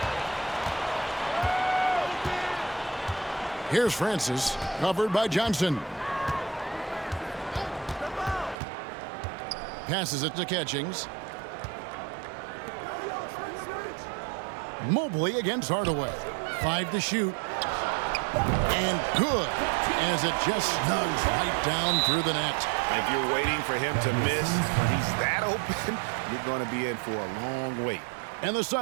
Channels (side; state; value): left; drops out; at 8.6 s